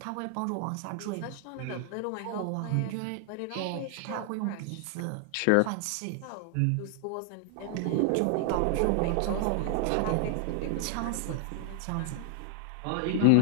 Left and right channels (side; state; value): both; different; correlation 0.00